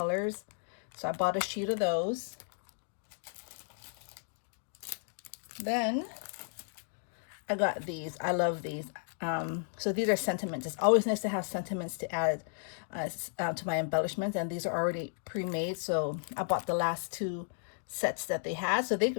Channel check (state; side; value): silent; right; digital silence